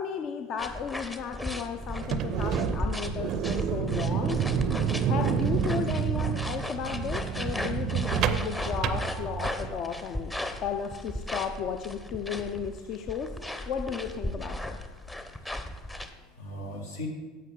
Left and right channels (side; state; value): both; normal; correlation 0.51